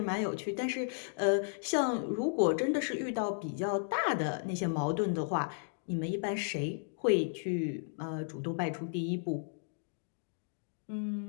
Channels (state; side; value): silent; right; digital silence